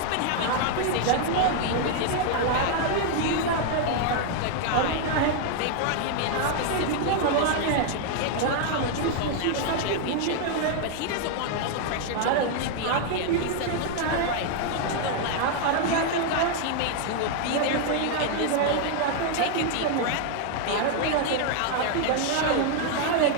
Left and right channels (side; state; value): both; different; correlation 0.00